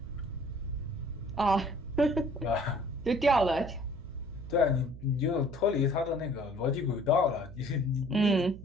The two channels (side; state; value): right; noise; hum, 14 dB below the sound